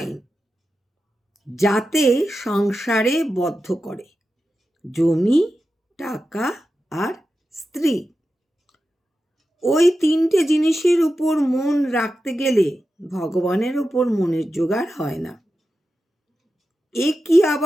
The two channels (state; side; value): normal; both; correlation 0.91